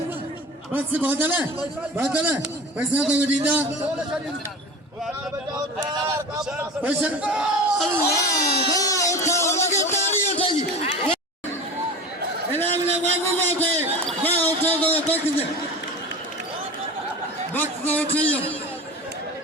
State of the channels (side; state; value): both; normal; correlation 0.33